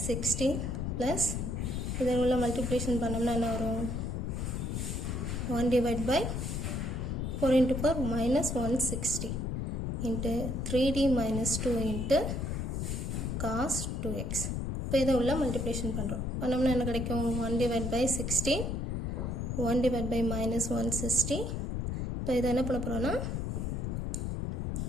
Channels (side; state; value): left; noise; rumble, 1 dB below the sound